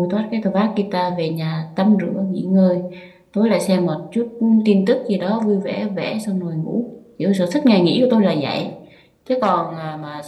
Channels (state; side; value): identical; both; correlation 1.00